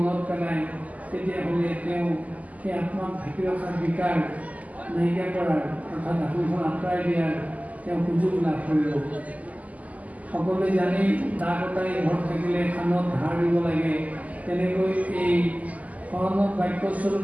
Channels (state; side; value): late; left; 0.075 ms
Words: পেলায় তেতিয়াহ'লে তেওঁ সেই আত্মাক ঢাকি ৰখাৰ বিকাৰ নাইকিয়া কৰাৰ অৰ্থাৎ আত্মখন আঁতৰাই দিয়াৰ তেওঁ সুযোগ লাভ কৰিব। সকলোৱে জানি দা কটাৰী ঘৰত থাকিলে খানত ধাৰ দিব লাগে, তেনেকৈ এই শৰণত বাক্যস্বৰূপ